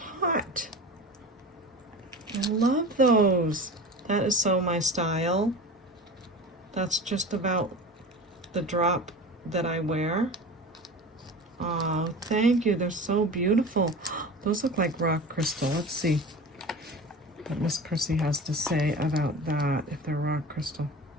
hot. I love those. That is so my style. That's just about the drop that I wear. Oh, thank you. They're so beautiful. Those look like rock crystal. Let's see what Miss Prissy has to say about that, if they're rock crystal.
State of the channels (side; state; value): both; normal; correlation 0.34